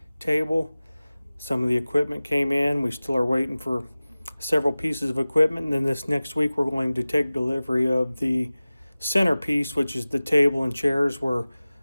table. Some of the equipment came in. We still are waiting for several pieces of equipment. And then this next week, we're going to take delivery of the centerpiece, which is the table and chairs where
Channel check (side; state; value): both; inverted; correlation -0.98